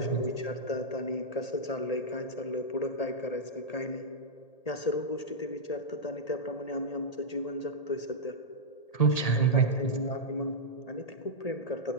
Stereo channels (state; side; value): late; right; 1.8 ms